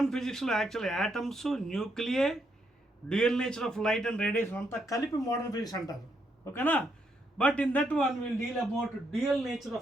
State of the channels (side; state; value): both; normal; correlation 0.77